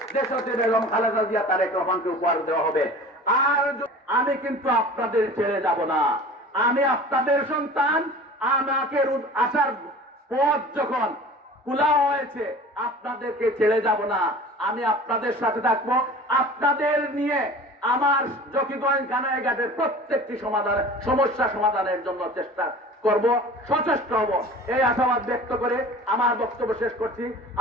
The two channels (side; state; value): both; normal; correlation 0.41